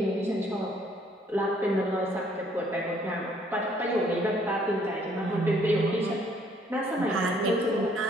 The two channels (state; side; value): normal; both; correlation 0.64